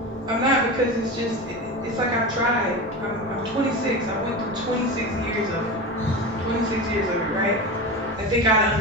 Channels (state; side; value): normal; both; correlation 0.25